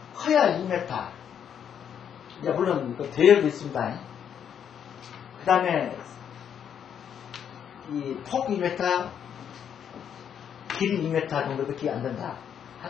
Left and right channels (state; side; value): quieter; right; 8.5 dB